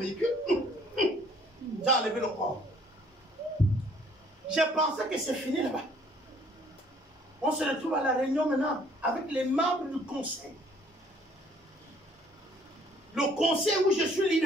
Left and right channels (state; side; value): normal; both; correlation 0.59